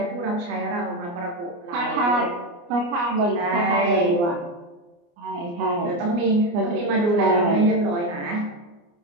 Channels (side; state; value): left; late; 29 ms